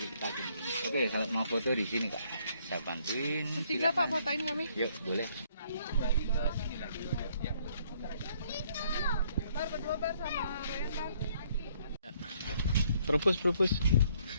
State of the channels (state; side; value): inverted; both; correlation -0.66